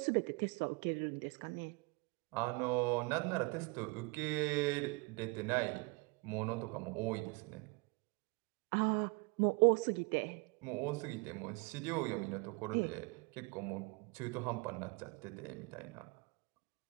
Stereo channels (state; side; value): quieter; left; 28.2 dB